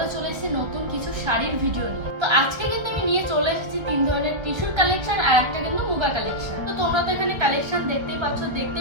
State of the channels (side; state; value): left; late; 1.3 ms